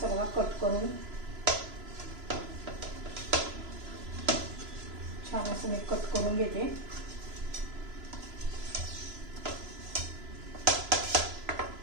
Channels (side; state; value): left; late; 3.0 ms